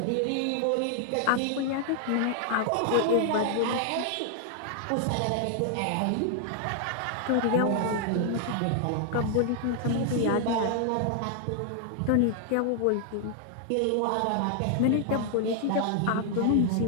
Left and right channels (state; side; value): different; both; correlation 0.00